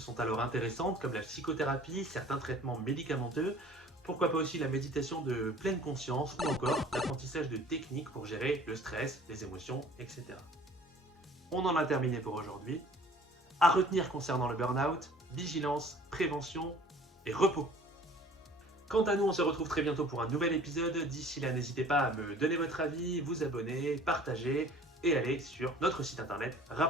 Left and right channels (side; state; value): both; normal; correlation 0.50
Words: alors intéressantes comme la psychothérapie, certains traitements médicamenteux, pourquoi pas aussi la méditation de pleine conscience ou encore l'apprentissage de techniques pour gérer le stress, les émotions, etc. On en a terminé pour aujourd'hui. À retenir concernant le burn-out, vigilance, prévention et repos. Quant à nous, on se retrouve très bientôt pour un nouvel épisode. D'ici là, n'hésitez pas à me donner votre avis, vous abonner, partager et aller sur notre site internet